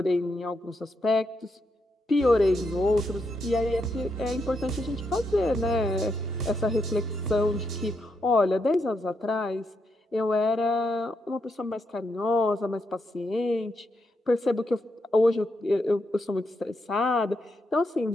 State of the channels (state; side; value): normal; both; correlation 0.81